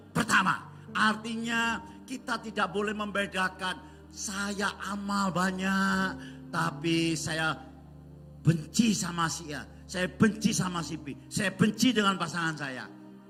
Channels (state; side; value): identical; both; correlation 1.00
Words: pertama. Artinya kita tidak boleh membedakan, saya amal banyak tapi saya benci sama si A, saya benci sama si B, saya benci dengan pasangan saya.